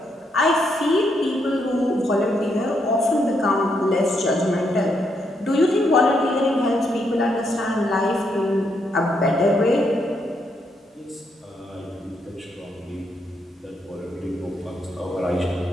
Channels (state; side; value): normal; both; correlation 0.77